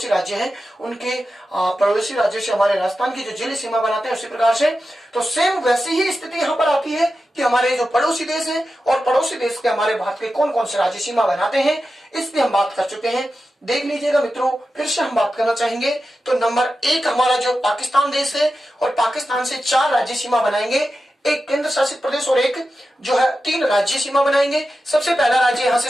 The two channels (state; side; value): normal; both; correlation 0.92